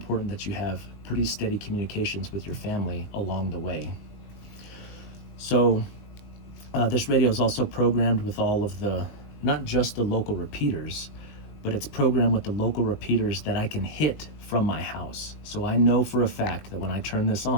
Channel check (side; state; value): right; late; 20 ms